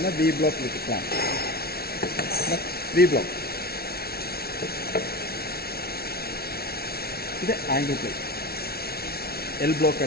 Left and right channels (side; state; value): right; late; 0.45 ms